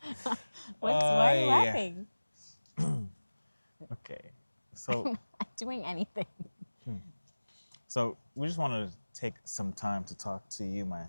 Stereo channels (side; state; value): both; inverted; correlation -1.00